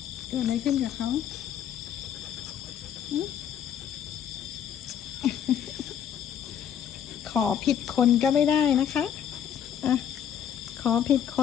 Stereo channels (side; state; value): right; quieter; 9.3 dB